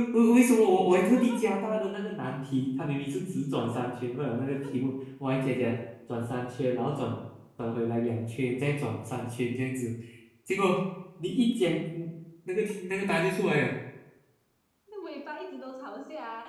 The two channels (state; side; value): identical; both; correlation 1.00